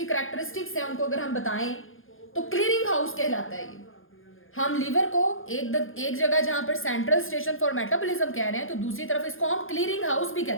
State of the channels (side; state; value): right; late; 0.59 ms